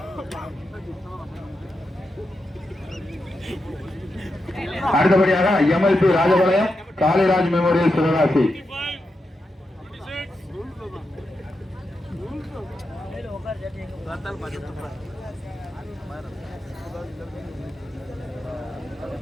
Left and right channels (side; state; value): both; normal; correlation 0.87